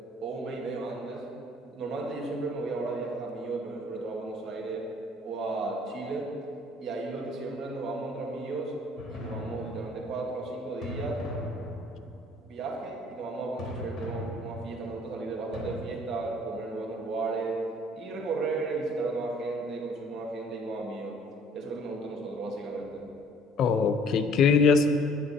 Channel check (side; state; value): both; normal; correlation 0.56